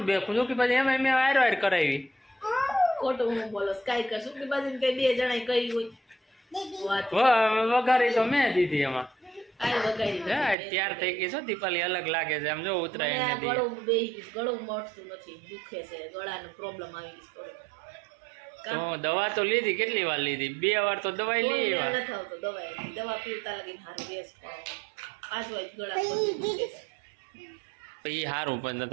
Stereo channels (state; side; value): drops out; left; at 10.6 s